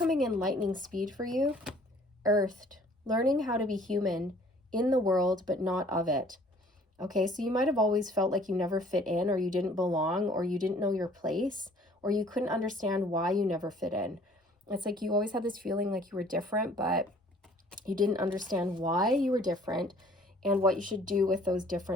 in lightning speed for you. Earthed. Learning how to be human in the world, but not of it. Okay, so you might have always felt like you never fit in, or you didn't belong, or you didn't know your place, or you couldn't understand why you never fit in. It's like you always had this feeling like you were different, but you didn't understand why you were different and what you should do with those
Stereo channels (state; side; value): normal; both; correlation 0.55